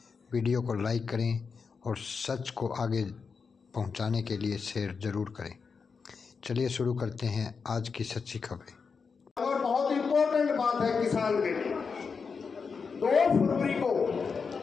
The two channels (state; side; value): quieter; right; 5.4 dB